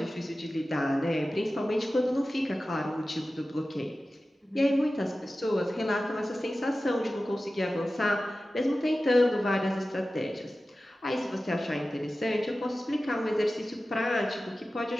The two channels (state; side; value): normal; both; correlation 0.95